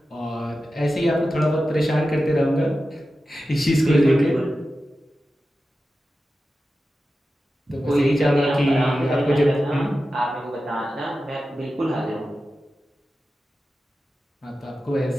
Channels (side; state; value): both; normal; correlation 0.93